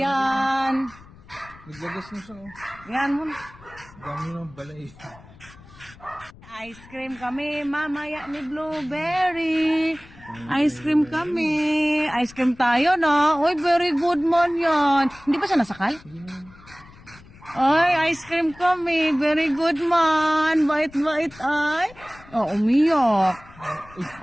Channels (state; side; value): noise; left; rumble, 22 dB below the sound